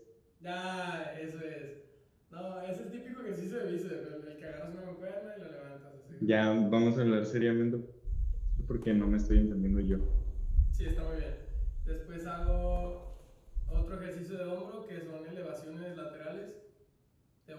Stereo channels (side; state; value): both; identical; correlation 1.00